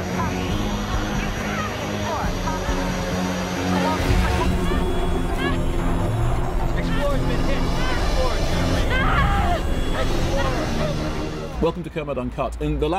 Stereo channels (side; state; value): both; identical; correlation 1.00